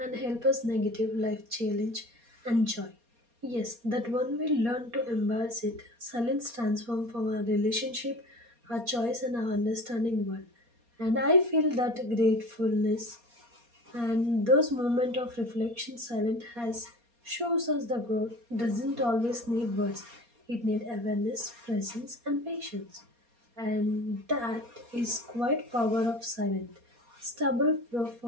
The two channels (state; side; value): late; left; 4.2 ms